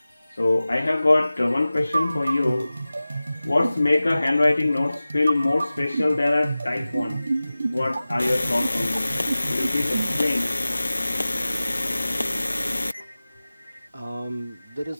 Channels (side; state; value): both; inverted; correlation -0.97